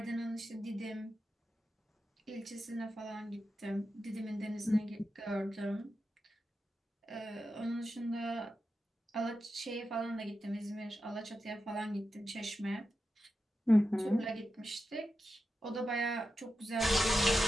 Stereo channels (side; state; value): both; normal; correlation 0.90